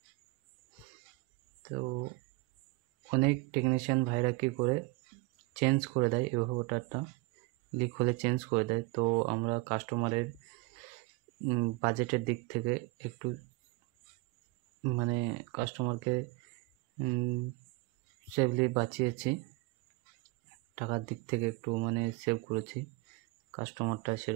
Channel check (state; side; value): quieter; left; 22.1 dB